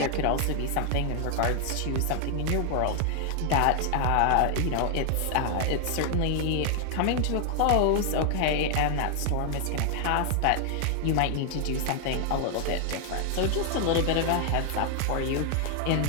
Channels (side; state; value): both; different; correlation 0.00